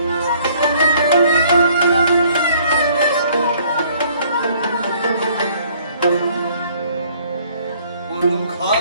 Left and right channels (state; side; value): inverted; both; correlation -0.60